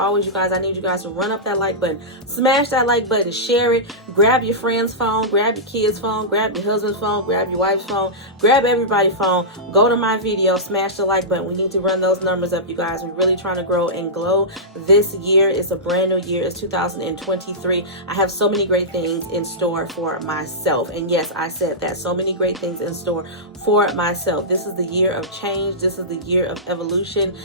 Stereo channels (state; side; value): normal; both; correlation -0.15